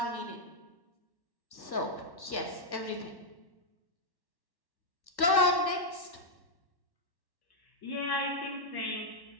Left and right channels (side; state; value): right; late; 1.1 ms